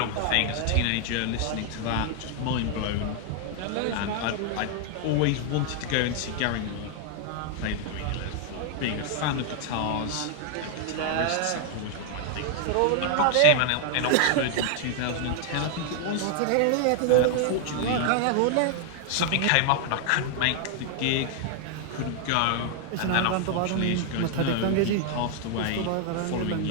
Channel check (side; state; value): both; different; correlation 0.00